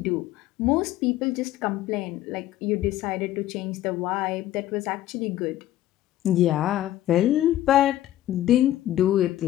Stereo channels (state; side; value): quieter; right; 13.6 dB